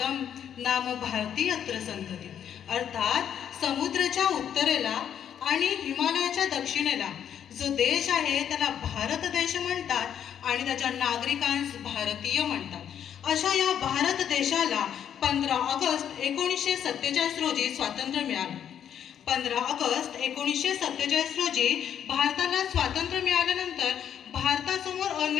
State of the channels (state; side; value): quieter; right; 9.2 dB